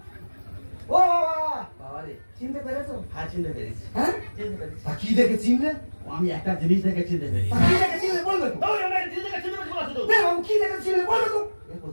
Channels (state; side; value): inverted; both; correlation -1.00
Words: ও বাবা বাবা রে চিনতে পেরেছো হ্যাঁ চিনতে পেরেছি হ্যাঁ চিনতে পেরেছি তা কি দেখে চিনলে আমি একটা জিনিস দেখে চিনতে পেরেছি তা কি দেখে চিনলে বলবে তো ওই আমি একটা জিনিস দেখে চিনতে পেরেছি বলা শুধু বাবু কি দেখে চিনলে বলবে তো